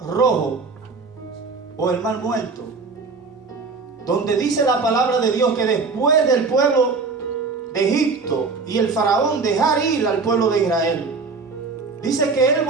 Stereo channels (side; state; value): left; quieter; 4.4 dB